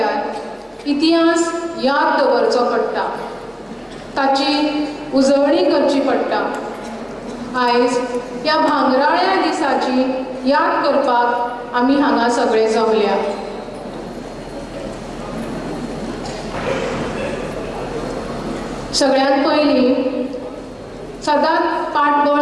इतिहास याद दवरचो पडटा, ताची उजळणी करची पडटा. आयज ह्या भांगराळ्या दिसाची याद करपाक आमी हांगा सगळे जमल्या. सगळ्यांत पयलीं सदांच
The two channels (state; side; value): identical; both; correlation 1.00